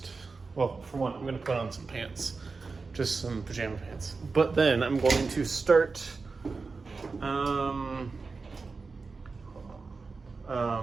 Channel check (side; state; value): left; quieter; 4.3 dB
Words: well, for one, I'm going to put on some pants, just some pajama pants. But then I'm going to start, I'm